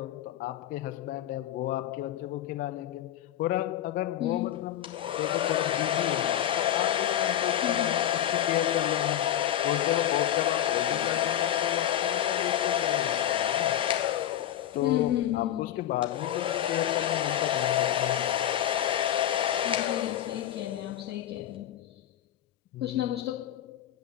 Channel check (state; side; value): quieter; right; 11.5 dB